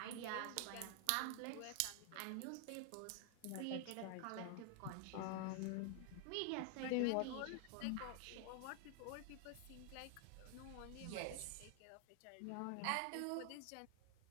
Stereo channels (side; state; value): both; different; correlation 0.00